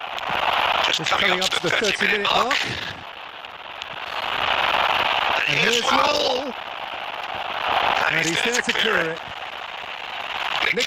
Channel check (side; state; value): both; identical; correlation 1.00